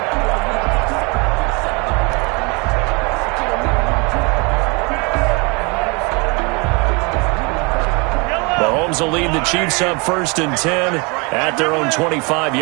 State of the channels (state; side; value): quieter; left; 30.2 dB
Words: Mahomes will lead the Chiefs up 1st and 10 at their own